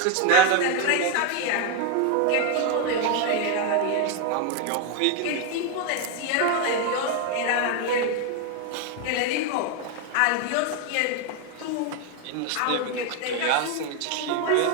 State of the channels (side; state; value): both; different; correlation 0.01